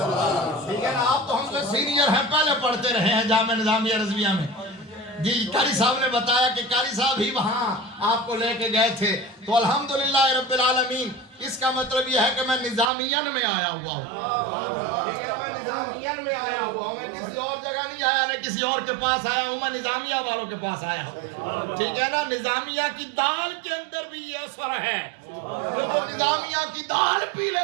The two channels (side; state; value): left; drops out; at 12.9 s